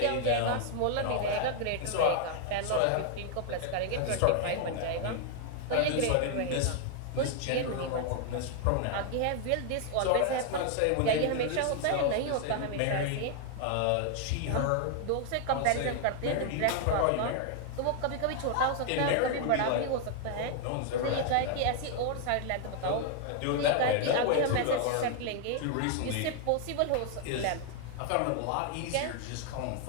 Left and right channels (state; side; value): different; both; correlation 0.00